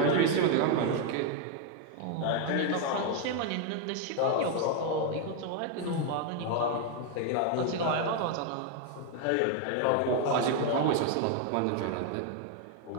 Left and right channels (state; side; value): different; both; correlation 0.01